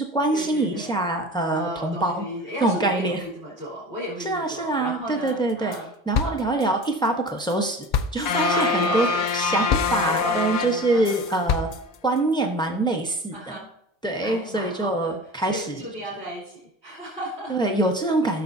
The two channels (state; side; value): normal; both; correlation 0.36